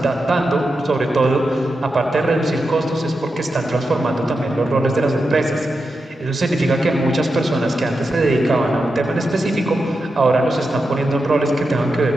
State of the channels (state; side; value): normal; both; correlation 0.88